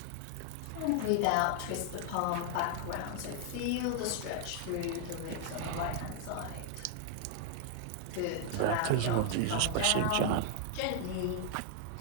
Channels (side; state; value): both; different; correlation 0.00